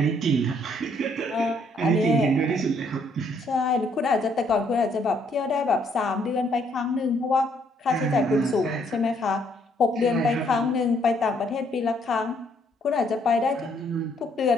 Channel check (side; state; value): both; normal; correlation 0.68